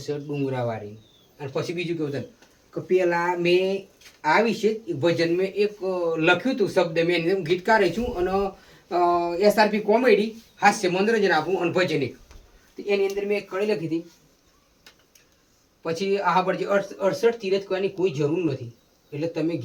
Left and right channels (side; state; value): both; identical; correlation 1.00